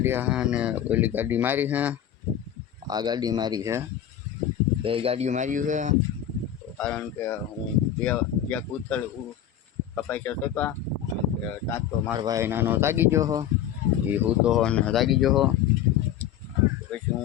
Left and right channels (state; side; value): quieter; right; 10.2 dB